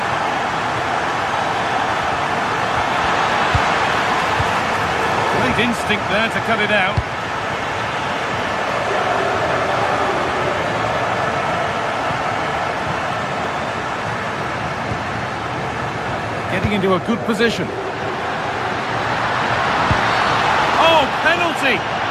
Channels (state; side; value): identical; both; correlation 1.00